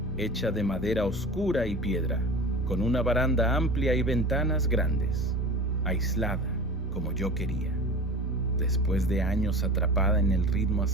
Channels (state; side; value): normal; both; correlation 0.35